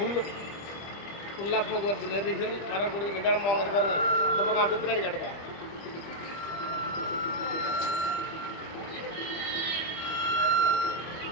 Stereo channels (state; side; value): late; right; 25 ms